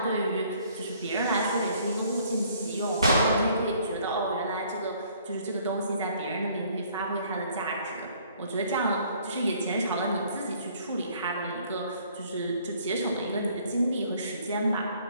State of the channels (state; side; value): inverted; both; correlation -0.60